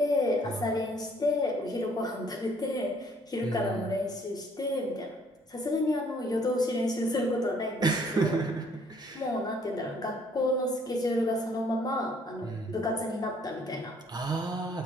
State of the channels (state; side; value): normal; both; correlation 0.62